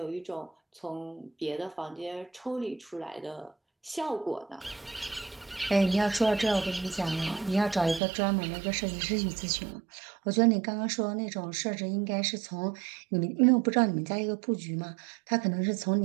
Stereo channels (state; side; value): drops out; left; at 8.0 s